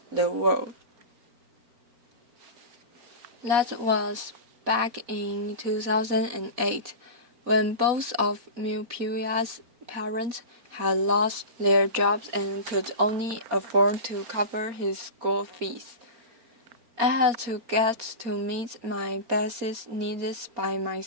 the world. That was back in 2008, when both of Mupuya's parents had lost their jobs and could only afford to cover his school fees. I had to get to meet my basic needs by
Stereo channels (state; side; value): late; left; 4.4 ms